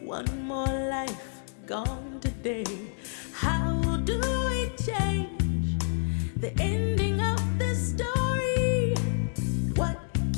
One more life gone today. How do we change the ending of this story?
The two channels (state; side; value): silent; right; 59 dB below the other